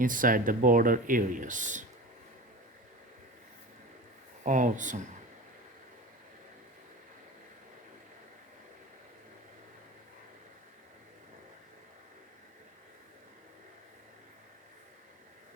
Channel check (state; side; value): normal; both; correlation 0.32